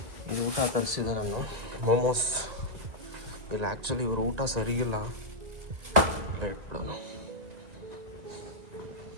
ಈ ಊಟ ತರಿಸಿದೆ ನಾನು, ಮೋಮೋಸ್. ಇಲ್ಲ ಆ್ಯಕ್ಚುಲಿ ಇವರು ಊಟ ಸರಿಗಿಲ್ಲ, ಇಟ್ಬಿಡೋಣ.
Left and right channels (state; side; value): late; left; 2.0 ms